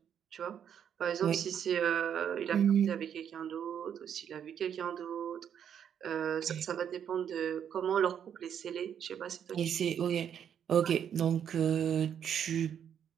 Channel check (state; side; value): quieter; left; 8.7 dB